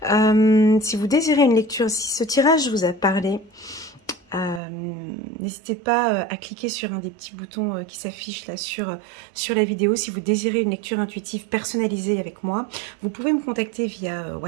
Si vous désirez une lecture, si ce tirage vous a parlé, n'hésitez pas à cliquer sur un des petits boutons qui s'affichent là sur la vidéo. Si vous désirez une lecture intuitive personnalisée avec moi, vous pouvez me contacter via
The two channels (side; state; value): left; drops out; at 4.6 s